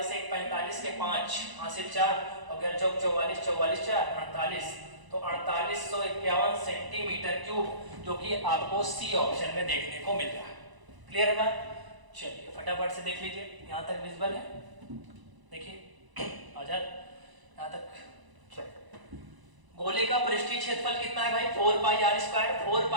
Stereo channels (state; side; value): late; left; 1.0 ms